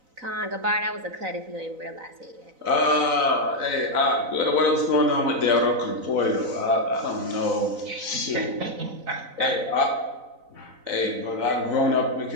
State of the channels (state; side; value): late; left; 4.0 ms